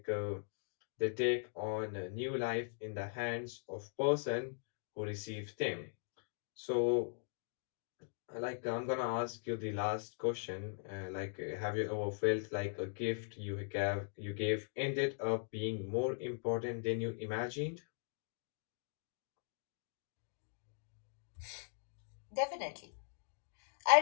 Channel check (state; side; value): silent; right; digital silence